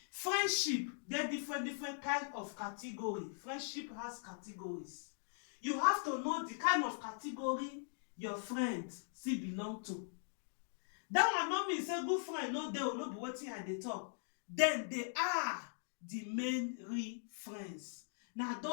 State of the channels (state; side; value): silent; right; digital silence